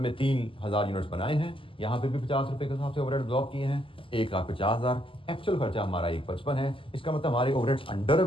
3,000 यूनिट्स बनाए हैं। यहाँ पे भी 50 रुपए के हिसाब से ओवरहेड एब्जॉर्ब किए हैं। 1,50,000 एक्चुअल खर्चा हमारा 155 है। इसका मतलब हमारे ओवरहेड्स अंडर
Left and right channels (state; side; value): late; right; 0.25 ms